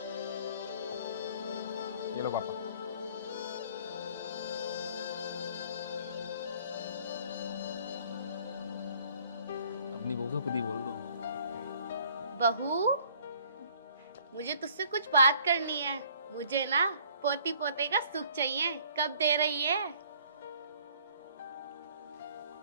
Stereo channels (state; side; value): inverted; both; correlation -0.57